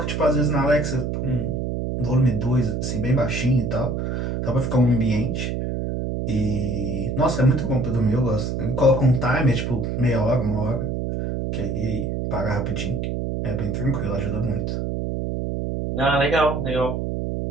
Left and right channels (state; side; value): noise; right; hum, 2 dB below the sound